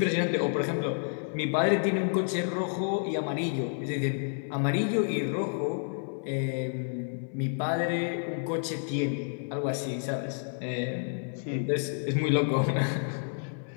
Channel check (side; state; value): right; silent; 58 dB below the other